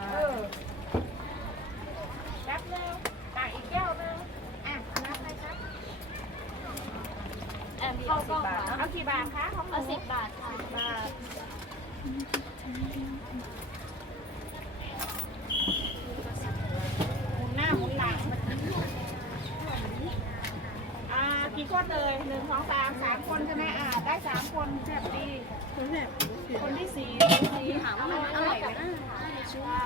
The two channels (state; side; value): normal; both; correlation 0.33